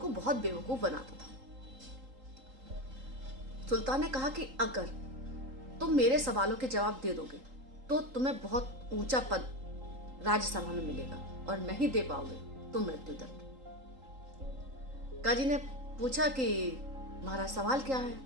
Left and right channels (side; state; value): left; late; 3.8 ms